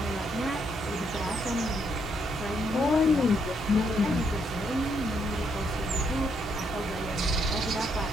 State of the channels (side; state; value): both; normal; correlation 0.74